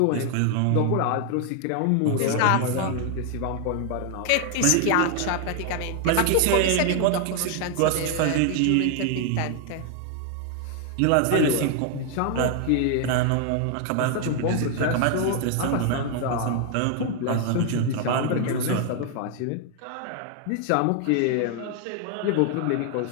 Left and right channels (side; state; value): both; different; correlation 0.00